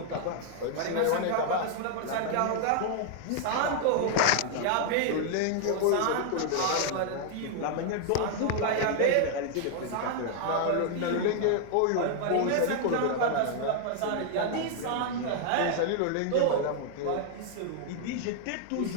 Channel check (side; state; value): both; different; correlation 0.00